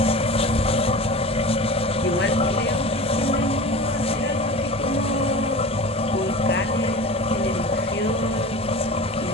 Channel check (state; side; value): normal; both; correlation 0.34